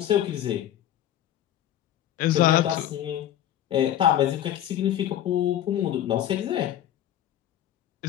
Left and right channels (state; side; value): quieter; right; 11.6 dB